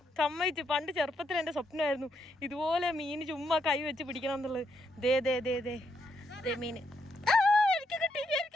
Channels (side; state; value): both; normal; correlation 0.78